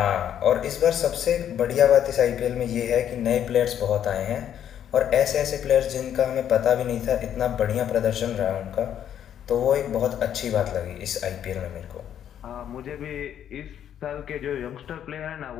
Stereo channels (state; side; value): quieter; right; 9.8 dB